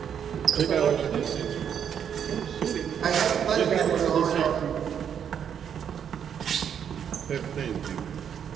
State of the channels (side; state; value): left; quieter; 8.3 dB